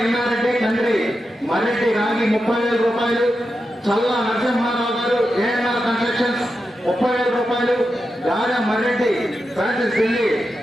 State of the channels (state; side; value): normal; both; correlation 0.89